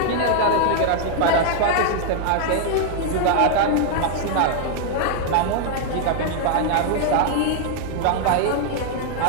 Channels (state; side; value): different; both; correlation 0.00